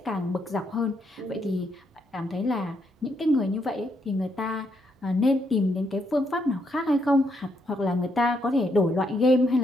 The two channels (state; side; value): normal; both; correlation 0.76